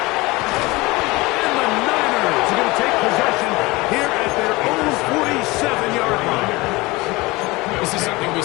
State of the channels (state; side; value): quieter; right; 22.3 dB